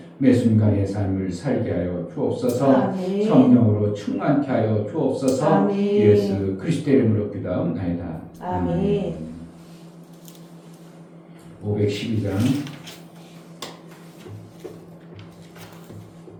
매 순간의 삶을 살게 하여 주옵소서. 성령으로 충만케 하여 주옵소서. 예수 그리스도의 이름으로 기도하옵나이다. 아멘. 512장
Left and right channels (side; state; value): both; identical; correlation 1.00